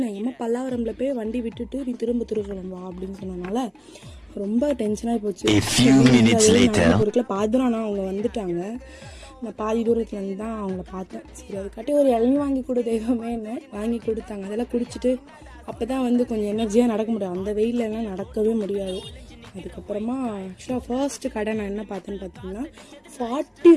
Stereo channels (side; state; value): both; identical; correlation 1.00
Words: எம்மா பல்லாவரமில் போய் வண்டி விட்டுட்டு நீ திரும்ப திருசூலம் வா அப்படின்னு சொன்னனால ரொம்ப டென்ஷனாகி போச்சு. பாதுரானா அவங்க வந்துட்டாங்க. நான் பாதி தூரத்துலேருந்து தான் அவங்கள பார்த்தேன். சரி, அதுக்காட்டி ஒரு இளநீ வாங்கி கொடு தெய்வமே என்ன வாங்கி கொடுத்தாங்க. அதெல்லாம் குடிச்சிட்டு அப்போ தான் வந்து கொஞ்சம் எனர்ஜியாக நடக்க முடியும். அந்த வெயிலெல்லாம் நடக்கவே முடியாது. அதுக்கப்புறமா ஆக்சுவலாக ஃபர்ஸ்ட்டு கடை நான் என்ன பார்த்தேன்னு பார்த்தீங்கன்னா 40